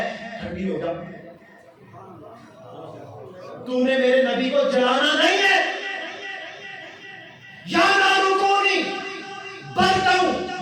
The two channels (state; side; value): identical; both; correlation 1.00